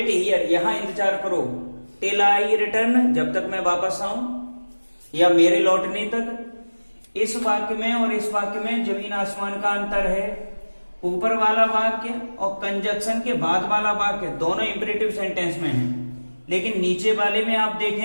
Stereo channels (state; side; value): inverted; both; correlation -1.00